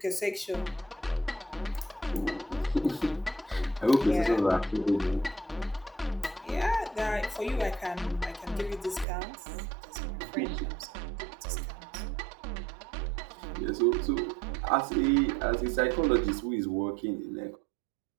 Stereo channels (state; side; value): drops out; left; at 9.1 s